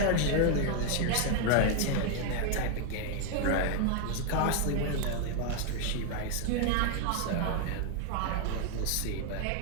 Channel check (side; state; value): both; different; correlation 0.00